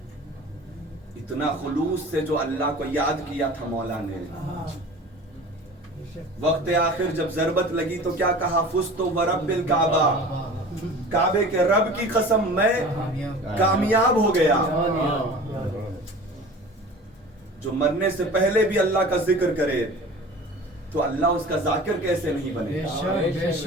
اتنا خلوص سے جو اللہ کو یاد کیا تھا مولا نے۔ وقت آخر جب ضربت لگی تو کیا کہا؟ فزت ورب الکعبہ، کعبے کے رب کی قسم میں کامیاب ہو گیا۔ جو مرنے سے پہلے بھی اللہ کا ذکر کرے تو اللہ اس کا ذاکر کیسے نہیں بنے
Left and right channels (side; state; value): both; normal; correlation 0.40